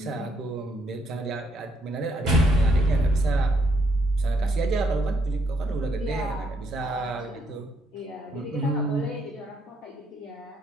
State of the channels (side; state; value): both; normal; correlation 0.73